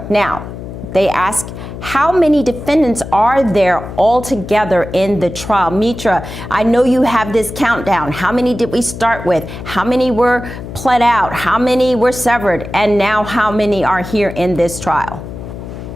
Now, they ask, how many defendants are there altogether in the trial? Mitra, I know you have this countdown. How many did we start with? How many were pled out? How many were severed? And now how many are here in this trial?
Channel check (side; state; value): left; noise; hum, 11 dB below the sound